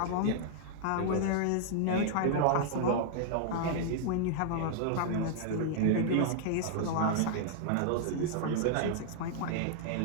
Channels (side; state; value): both; different; correlation -0.01